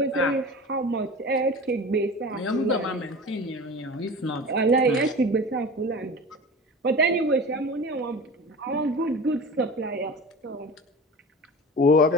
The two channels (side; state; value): both; normal; correlation 0.36